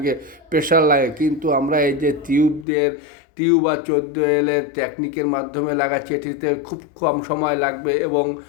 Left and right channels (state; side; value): drops out; right; at 2.7 s